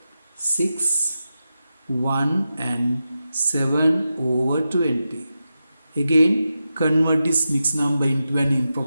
6, 1 and 7 over 20. Again, convert this mixed number into an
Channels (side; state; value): both; inverted; correlation -0.90